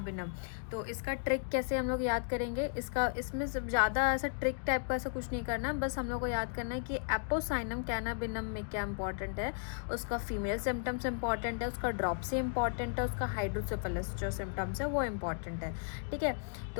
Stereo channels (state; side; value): silent; right; digital silence